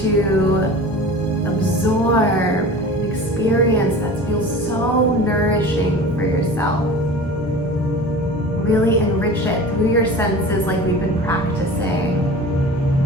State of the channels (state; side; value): normal; both; correlation 0.38